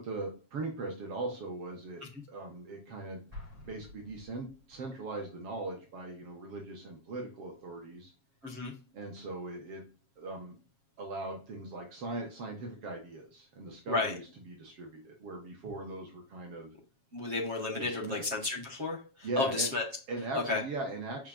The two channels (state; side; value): late; left; 7.3 ms